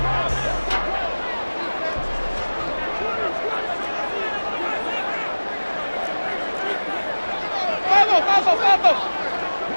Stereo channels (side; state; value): both; inverted; correlation -1.00